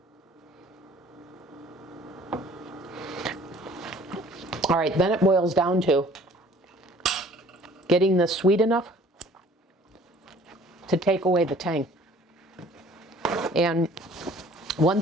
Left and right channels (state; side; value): normal; both; correlation 0.52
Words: All right, then it boils down to getting this sweet enough to take away the tang. And one